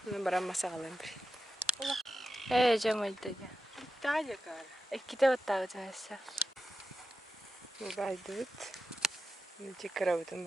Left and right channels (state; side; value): normal; both; correlation 0.89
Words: Ben bana masa kalayım bir. Cemil'de. Daha yakar. İki de ottağı cahilse. Baydıt. Cikara bütün